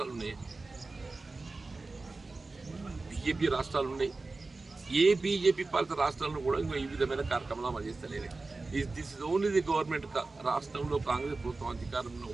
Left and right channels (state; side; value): quieter; left; 3.6 dB